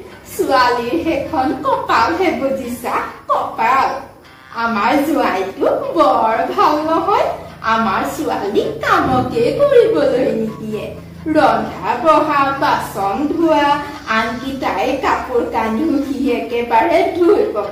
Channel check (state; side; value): identical; both; correlation 1.00